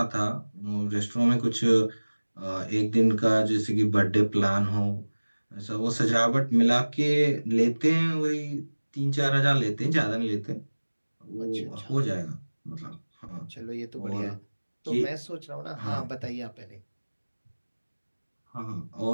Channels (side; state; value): both; inverted; correlation -1.00